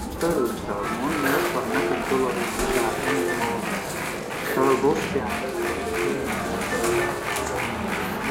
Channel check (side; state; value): both; identical; correlation 1.00